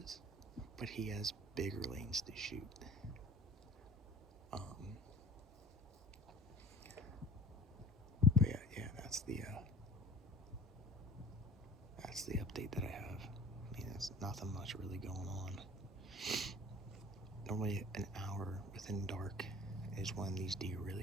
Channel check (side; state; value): both; normal; correlation 0.47